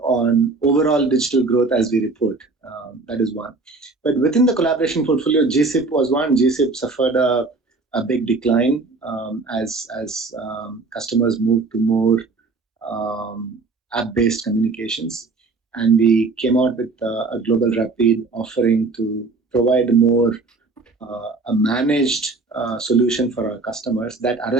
on overall digital growth as we report. That is one. But within the collaboration portfolio, GSIP was one. GSIP suffered a big decline as customers moved to more app-based communications. And we came out with a global rapid offering to provide more a managed solution for our customers that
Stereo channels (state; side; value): quieter; left; 3.8 dB